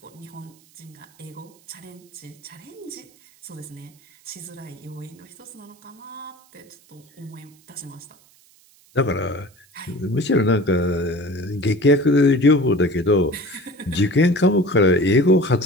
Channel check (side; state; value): right; noise; hiss, 29 dB below the sound